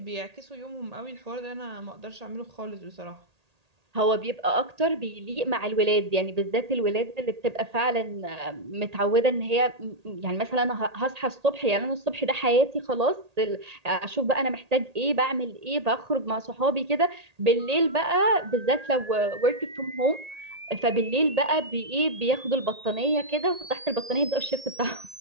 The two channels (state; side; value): late; left; 1.8 ms